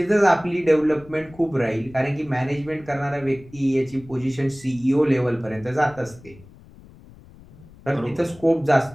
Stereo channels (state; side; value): noise; left; rumble, 22 dB below the sound